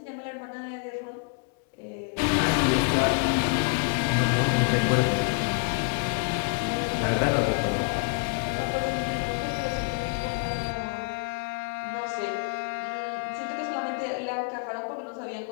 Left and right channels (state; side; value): quieter; right; 35.1 dB